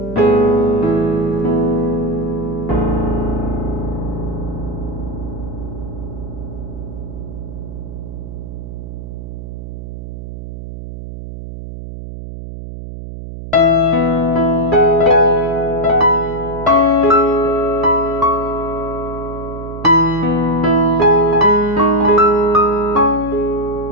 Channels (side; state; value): right; noise; hum, 10 dB below the sound